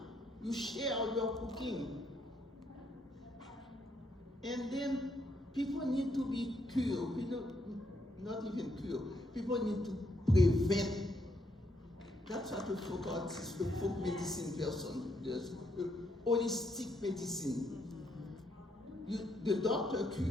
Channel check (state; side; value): normal; both; correlation 0.75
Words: You share your cooking. And then people need to be cured. Not even cured. People need to prevent. That's what a folk artist, a folk medicine person does. Holistic medicine. The doctor